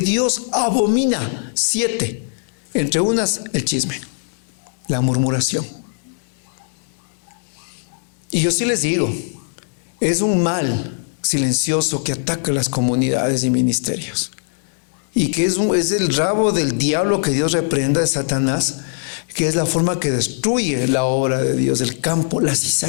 abomina. 7. Entre unas, el chisme, la murmuración. Y yo sí les digo, es un mal silencioso que ataca las comunidades y ministerios. Y que es el rabo del diablo que Dios reprenda de Satanás, que es la forma que destruye la obra de Dios, el campo, la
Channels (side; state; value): right; silent; digital silence